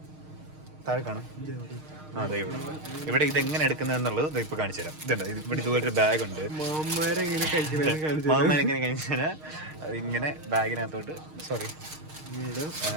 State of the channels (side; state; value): left; late; 6.5 ms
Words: താഴെ കാണും. അതെ, ഇവിടെ ഇതെങ്ങനെ എടുക്കുന്നത് എന്നുള്ളത് ഇപ്പൊ കാണിച്ചു തരാം. ഇതുണ്ട്, ഇവിടെ ഇതുപോലൊരു ബാഗ് ഉണ്ട്. മാമരെങ്ങനെ കഴിച്ചു തരാം. ഇങ്ങനെ ബാഗിനകത്തോട്ട്